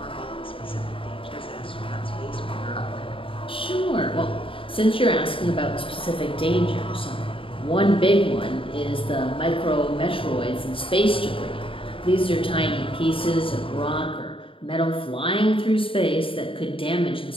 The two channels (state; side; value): late; right; 0.26 ms